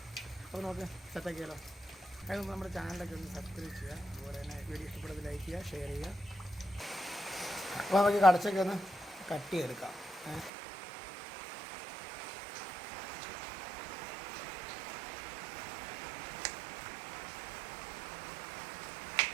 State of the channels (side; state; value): left; drops out; at 10.5 s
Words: അപ്പോൾ നമുക്ക് സെറ്റാക്കിയാലോ. അതിന് നമ്മുടെ ചാനലൊക്കെ ഒന്ന് സബ്സ്ക്രൈബ് ചെയ്യുക, അതുപോലെ തന്നെ വീഡിയോ ഇഷ്ടപ്പെടുന്നത് ലൈക്ക് ചെയ്യുക, ഷെയർ ചെയ്യുക. അപ്പോൾ നമുക്ക് കടച്ചക്ക ഒന്ന് കട്ട് ചെയ്തെടുക്കാം.